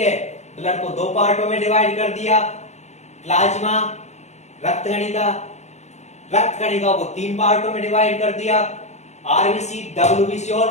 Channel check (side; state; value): right; late; 0.33 ms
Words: ब्लड को दो पार्टों में डिवाइड कर दिया, प्लाज्मा रक्त कणिका को तीन पार्टों में डिवाइड कर दिया, आरबीसी, डब्ल्यूबीसी और